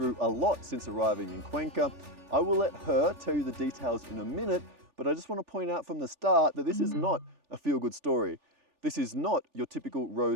a lot since arriving in Cuenca. I will let her tell you the details in a minute, but I just want to point out from the start that this is not a feel-good story. This is not your typical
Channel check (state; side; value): late; left; 3.4 ms